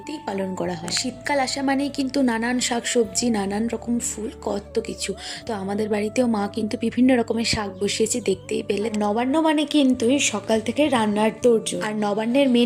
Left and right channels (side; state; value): both; identical; correlation 1.00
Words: পালন করা হয়। শীতকাল আসা মানেই কিন্তু নানান শাকসবজি, নানান রকম ফুল, কত কিছু। তো আমাদের বাড়িতেও মা কিন্তু বিভিন্ন রকমের শাক বসিয়েছে, দেখতেই পেলে। নবান্ন মানে কিন্তু সকাল থেকে রান্নার তোড়জোড়। আর নবান্নের